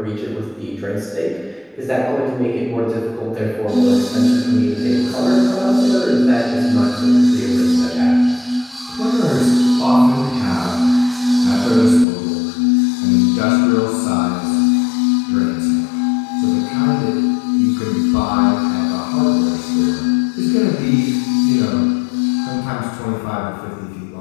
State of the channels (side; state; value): right; drops out; at 12.1 s